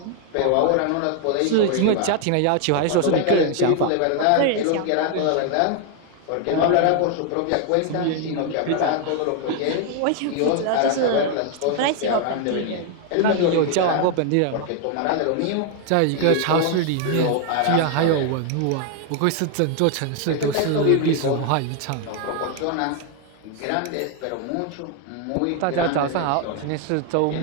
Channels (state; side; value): different; both; correlation 0.00